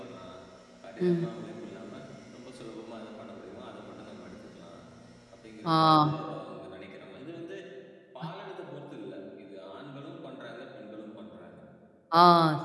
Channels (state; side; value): identical; both; correlation 1.00